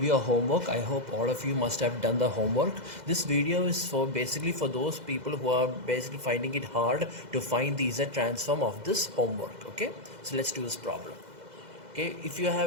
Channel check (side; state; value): left; late; 2.0 ms